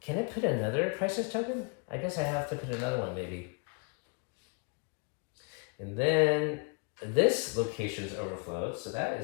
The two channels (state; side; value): quieter; right; 35.7 dB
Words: I put another crisis token? I guess I have to put another one, maybe. And then this location is overflowed, so that